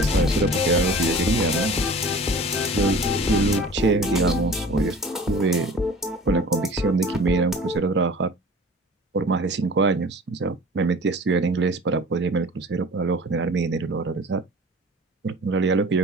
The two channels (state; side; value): normal; both; correlation 0.43